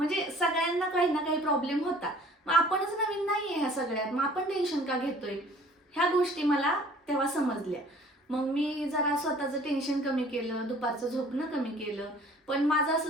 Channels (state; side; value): normal; both; correlation 0.52